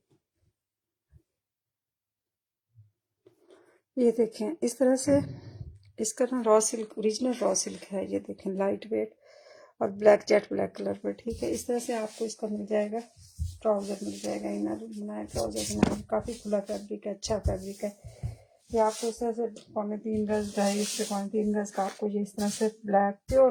ये देखें इस तरह से इसका ना raw silk, original raw silk है। ये देखें लाइट वेट और ब्लैक, जेट ब्लैक कलर पर, ठीक है। इस तरह से आपको इसका मिल जाएगा, ट्राउज़र मिल जाएगा, इनर बनाया ट्राउज़र बनाया, काफ़ी खुला फैब्रिक है, अच्छा फैब्रिक है। ये आपको इस तरह से 3.25 गज, 2.5 से 3.25 गज का आपको ये इस तरह से ब्लैक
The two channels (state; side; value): identical; both; correlation 1.00